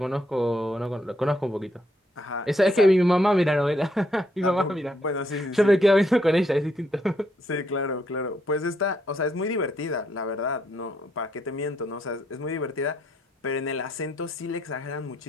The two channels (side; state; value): both; normal; correlation 0.74